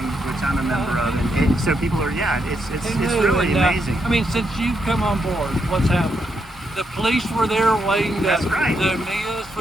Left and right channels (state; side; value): normal; both; correlation 0.80